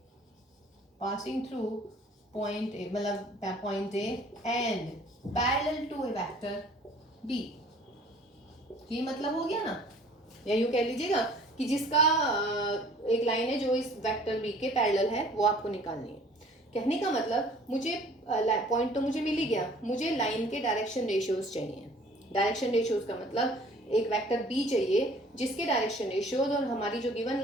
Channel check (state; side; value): normal; both; correlation 0.53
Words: A मतलब point A and parallel to a vector B, ये मतलब हो गया ना। या यूं कह लीजिएगा कि जिसका एक लाइन है जो इस वेक्टर बी के पैरेलल है वो आपको निकालनी है। कहने का मतलब मुझे पॉइंट तो मुझे मिल ही गया, मुझे लाइन के डायरेक्शन रेशियोज चाहिए। डायरेक्शन रेशियोज का मतलब एक वेक्टर बी चाहिए जिसके डायरेक्शन रेशियोज और हमारी जो गिवन